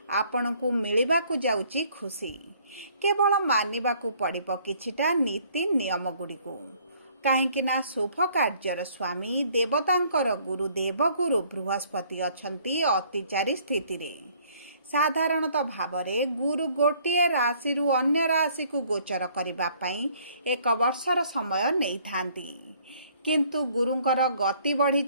आपणकु मिलिबाकु जाउची खुशी। केवल मानिबाकु पड़िबो किछिटा नीति नियम गुड़िकु काहेकि ना शुभ कार्यर स्वामी देवतांकर गुरु देवगुरु बृहस्पति अछंती अतिचारी स्थिति रे। साधारणतः भावरे गुरु गोटिए राशि रु अन्य राशि को गोचर करिबा पई एक वर्षर समय नै थांती, किंतु गुरुंकर गति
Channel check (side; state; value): both; inverted; correlation -0.61